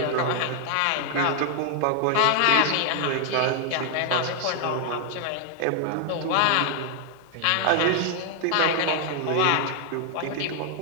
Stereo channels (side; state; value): both; different; correlation 0.00